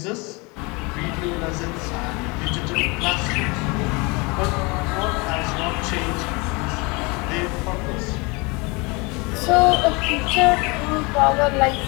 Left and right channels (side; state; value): right; quieter; 27.5 dB